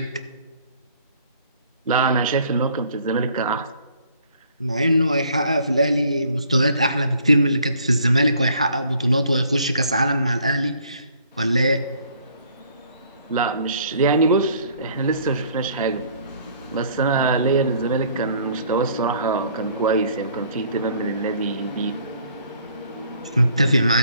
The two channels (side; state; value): both; inverted; correlation -0.59